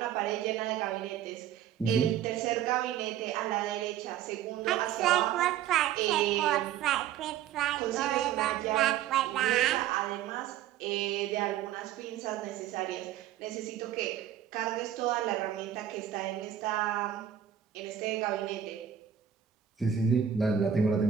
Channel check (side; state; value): left; quieter; 10.0 dB